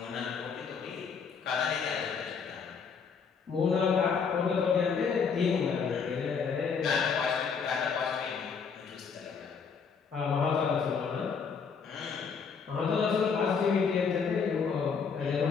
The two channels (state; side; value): quieter; right; 5.9 dB